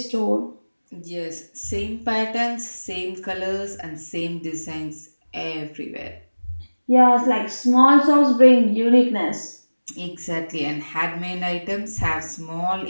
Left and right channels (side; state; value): both; inverted; correlation -1.00